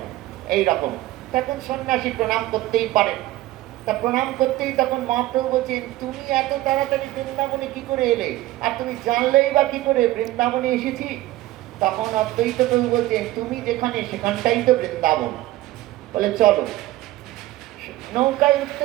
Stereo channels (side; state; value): left; quieter; 16.8 dB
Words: এইরকম। তখন সন্ন্যাসী প্রণাম করতেই পারেন। তা প্রণাম করতেই তখন মহাপ্রভু বলছেন, তুমি এত তাড়াতাড়ি বৃন্দাবনে কি করে এলে, আর তুমি জানলেই বা কি করে বৃন্দাবনে এসেছি? তখন অদ্বৈত প্রভু বলছেন, তুমি যেখানে সেখানটাই তো বৃন্দাবন। বলে চলো। নৌকায় উঠতে